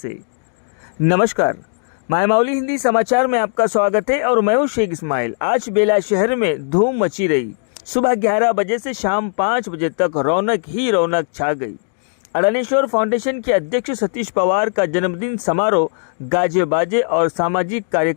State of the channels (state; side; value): silent; right; digital silence